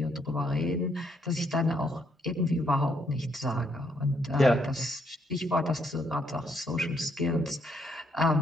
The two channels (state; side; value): normal; both; correlation 0.73